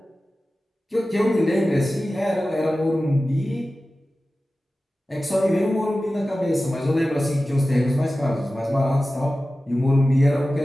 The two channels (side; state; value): both; normal; correlation 0.95